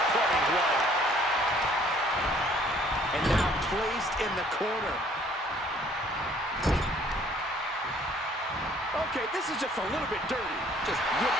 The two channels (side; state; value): both; normal; correlation 0.59